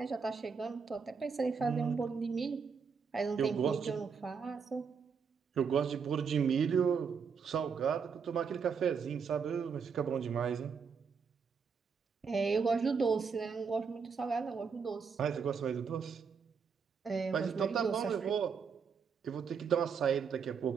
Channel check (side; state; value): left; quieter; 6.0 dB